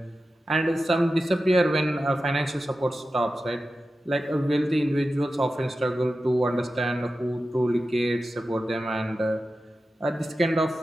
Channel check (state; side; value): normal; both; correlation 0.93